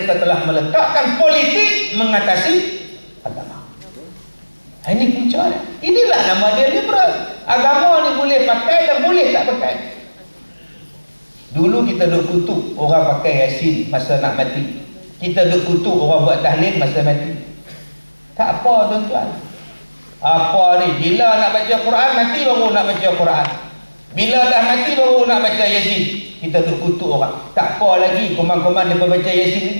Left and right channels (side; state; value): both; inverted; correlation -1.00